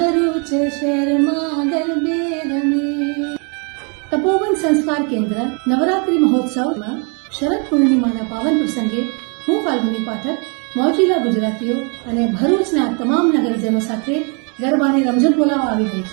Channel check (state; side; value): quieter; left; 36.1 dB